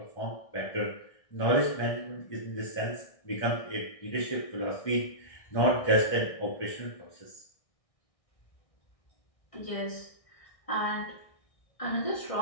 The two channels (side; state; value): right; late; 1.6 ms